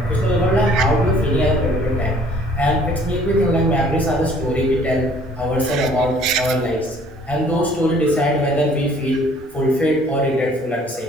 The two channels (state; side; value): normal; both; correlation 0.57